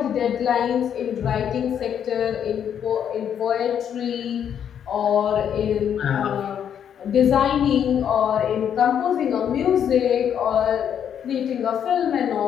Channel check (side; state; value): right; quieter; 8.8 dB